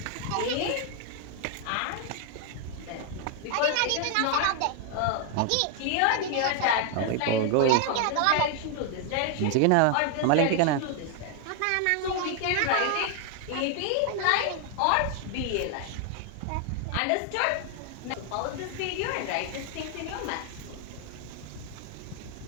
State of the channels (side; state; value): both; different; correlation 0.00